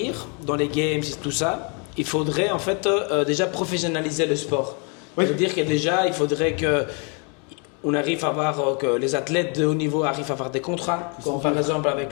dans les games et tout ça, il faudrait en fait déjà professionnaliser le sport. Oui. C'est-à-dire que déjà, il faudrait on arrive à voir que les athlètes de haut niveau arrivent à avoir des contrats, comme par exemple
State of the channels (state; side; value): quieter; right; 35.8 dB